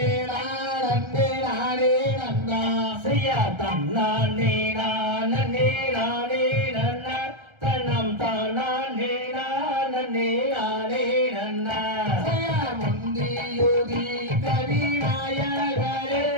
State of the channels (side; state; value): left; late; 1.3 ms